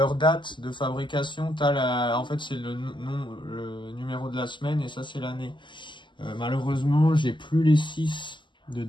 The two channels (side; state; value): right; late; 0.23 ms